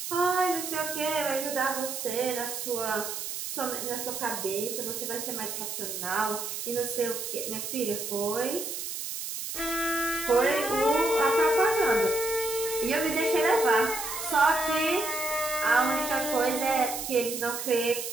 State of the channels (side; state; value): right; noise; hiss, 5 dB below the sound